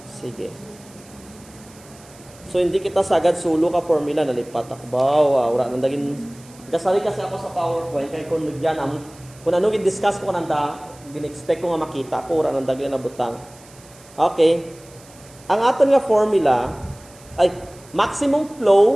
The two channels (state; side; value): noise; right; hiss, 24 dB below the sound